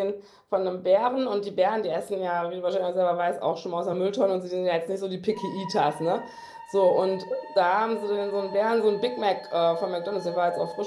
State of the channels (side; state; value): both; identical; correlation 1.00